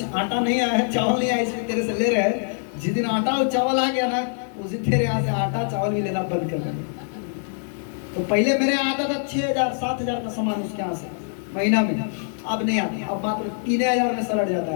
आटा नहीं आया है, चावल नहीं आया, इसलिए तेरे से ले रहे हैं। जिस दिन आटा और चावल आ गया ना, उस दिन तेरे यहाँ से आटा चावल भी लेना बंद कर देंगे। तो पहले मेरे यहाँ आता था 6000-7000 का सामान उसके यहाँ से महीना में, अब नहीं आता। अब मात्र 3000 में सलट जाता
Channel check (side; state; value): right; silent; digital silence